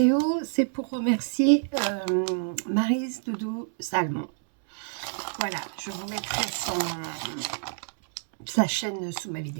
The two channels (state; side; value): silent; left; 60 dB below the other